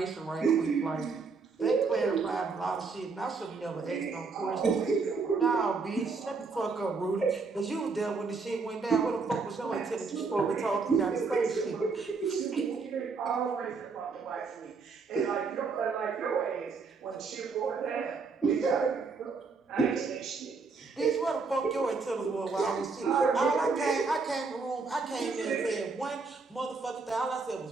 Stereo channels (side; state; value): left; quieter; 4.5 dB